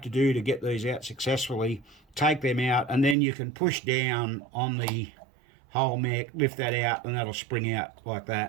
to do to get these out successfully, take them out, and then you can push down on the whole mech, lift that out, and that'll spring out like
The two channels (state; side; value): drops out; left; at 3.2 s